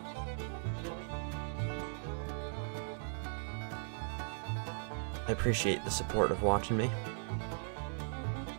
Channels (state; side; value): silent; left; 52 dB below the other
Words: I appreciate the support of watching me.